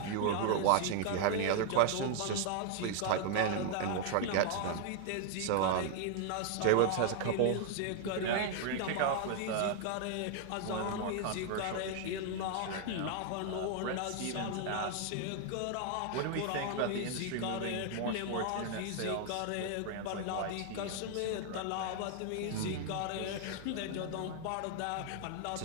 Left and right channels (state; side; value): different; both; correlation 0.00